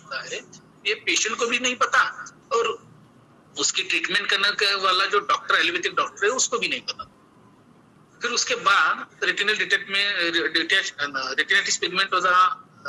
है, ये पेशेंट को भी नहीं पता और उसकी ट्रीटमेंट करने वाला जो डॉक्टर, एलोपैथिक डॉक्टर है, उसको भी नहीं पता। फिर उसके बाद रेटिनल रेटिनाइटिस पिगमेंटोजा,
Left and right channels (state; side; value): identical; both; correlation 1.00